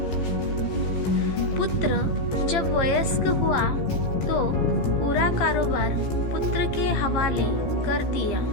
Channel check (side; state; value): right; late; 15 ms